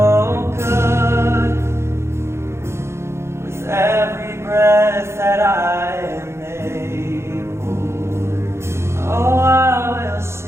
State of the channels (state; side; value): late; left; 0.13 ms